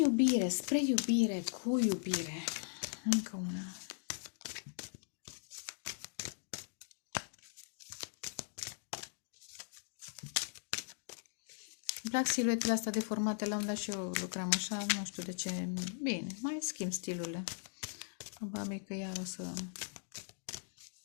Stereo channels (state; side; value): silent; right; digital silence